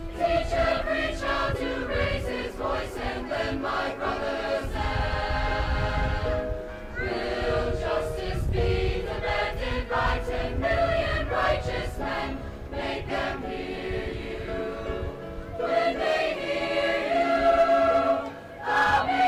Teach every child to raise his voice and lend my brother's hand. Will justice be demanded by 10 million righteous men? Make them hear you. When they hear you, how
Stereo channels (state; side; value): identical; both; correlation 1.00